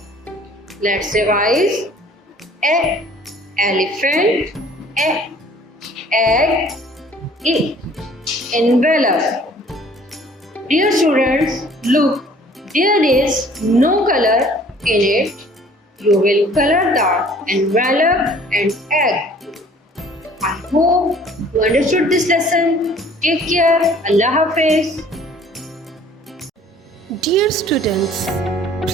Let's revise. E, elephant. E, egg. E, envelope. Dear students, look, there is no color in it. You will color the envelope and egg. I hope you understood this lesson. Take care. Allah Hafiz. Dear students,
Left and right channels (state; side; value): normal; both; correlation 0.53